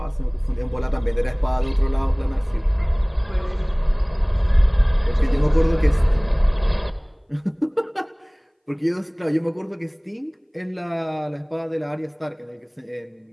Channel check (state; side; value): identical; both; correlation 1.00